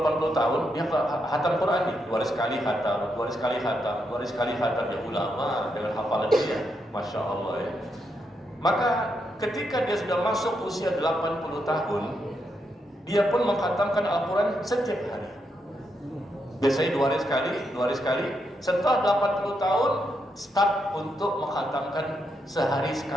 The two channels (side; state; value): both; normal; correlation 0.81